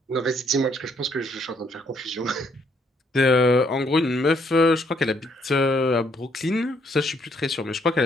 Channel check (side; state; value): both; normal; correlation 0.69